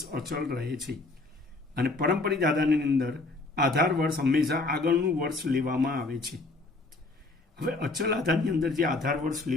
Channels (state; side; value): quieter; right; 3.2 dB